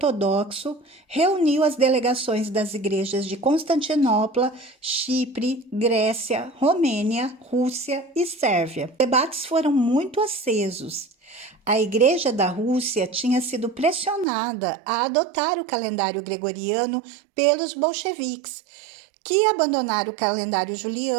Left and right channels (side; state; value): left; drops out; at 14.2 s